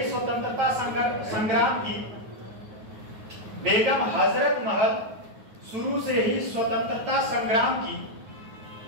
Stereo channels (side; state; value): left; late; 9.4 ms